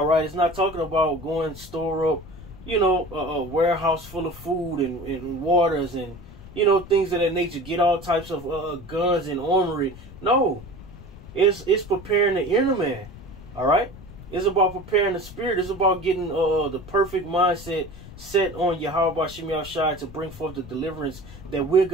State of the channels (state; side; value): noise; left; rumble, 16 dB below the sound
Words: right, it's not talking about going store up, a warehouse full of food and waters and things of that nature, get all types of guns and armory. No, it's preparing the inner man. All right. It's about preparing the spirit. It's about getting the perfect mindset set on Yahweh Shem Shai to bring forth the deliverance that we're